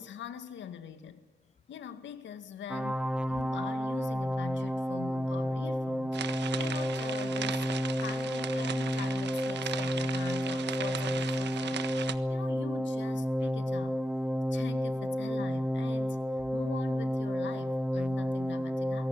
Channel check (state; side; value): normal; both; correlation 0.88